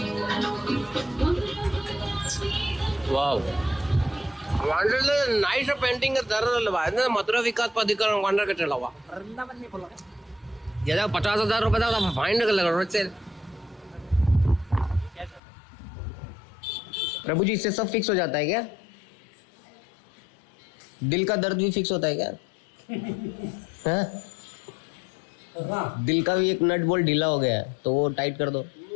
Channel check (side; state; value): right; drops out; at 15.4 s